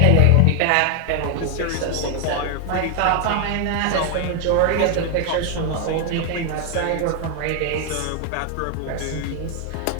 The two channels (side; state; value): both; different; correlation 0.00